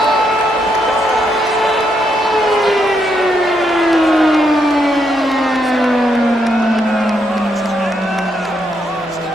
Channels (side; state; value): left; noise; hum, 29 dB below the sound